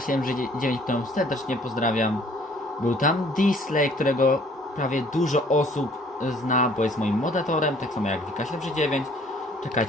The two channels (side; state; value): both; normal; correlation 0.57